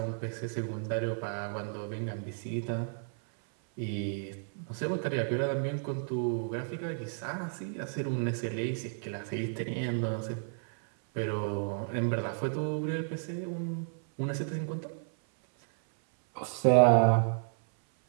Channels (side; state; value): left; silent; 56 dB below the other